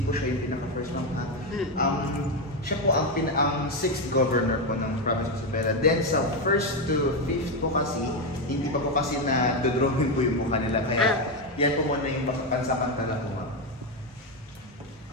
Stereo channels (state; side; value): normal; both; correlation 0.08